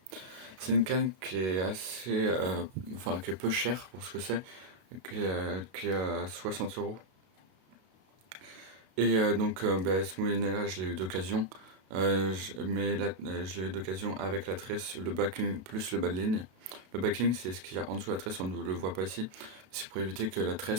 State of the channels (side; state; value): left; late; 32 ms